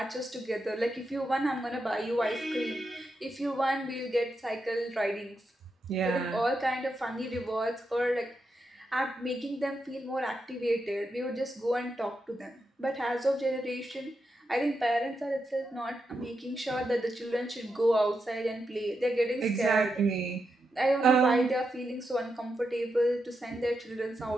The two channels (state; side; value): normal; both; correlation 0.85